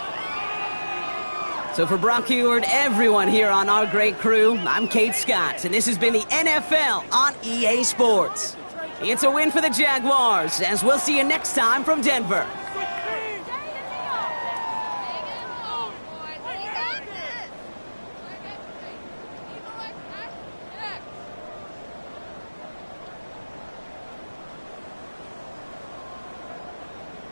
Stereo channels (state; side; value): inverted; both; correlation -1.00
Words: So for Brock Heward, everyone here on our great crew, I'm Kate Scott, and this has been the NFL on EA Sports. It's a win for the Jaguars, as we'll see you next time from Denver.